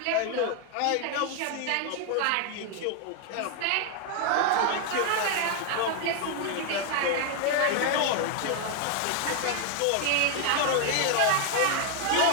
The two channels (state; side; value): different; both; correlation 0.00